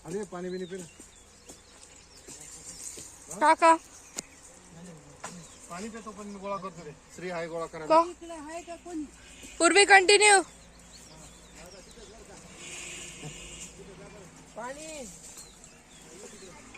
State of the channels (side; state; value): both; identical; correlation 1.00